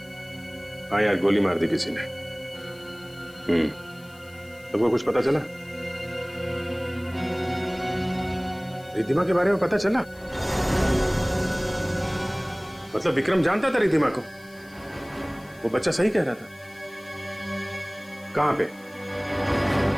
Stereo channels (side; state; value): left; noise; hiss, 25 dB below the sound